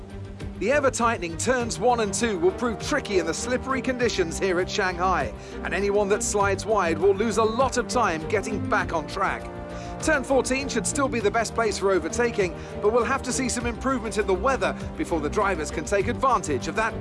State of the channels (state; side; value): identical; both; correlation 1.00